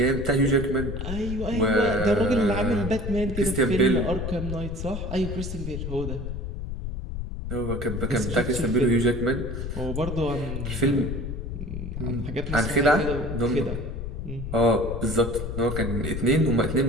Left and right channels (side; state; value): left; noise; rumble, 5 dB below the sound